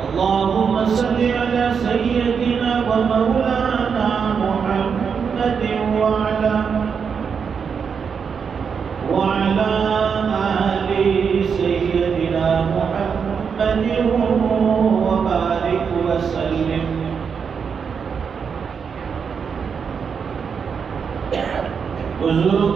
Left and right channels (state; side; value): quieter; left; 6.4 dB